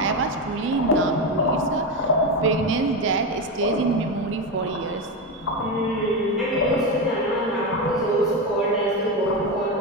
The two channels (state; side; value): normal; both; correlation 0.14